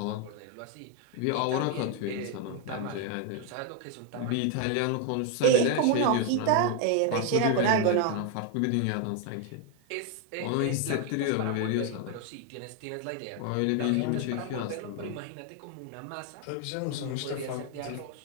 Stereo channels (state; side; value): different; both; correlation 0.01